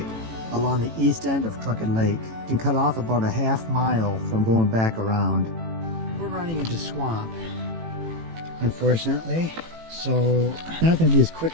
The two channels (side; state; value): left; late; 18 ms